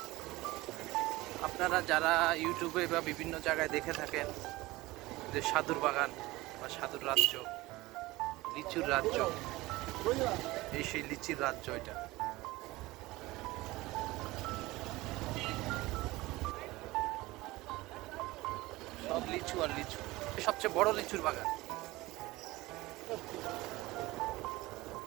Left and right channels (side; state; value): left; quieter; 19.8 dB